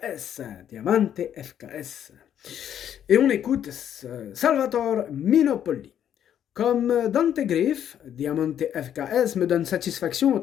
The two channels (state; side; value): quieter; right; 9.8 dB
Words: Diamante FKS. Et on écoute Salvatore Minopoli. Comme Dante Griff, Diamante FKS me donne satisfaction au